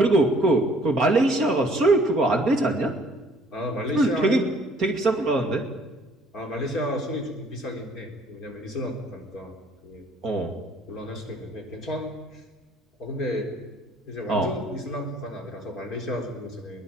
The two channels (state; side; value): normal; both; correlation 0.59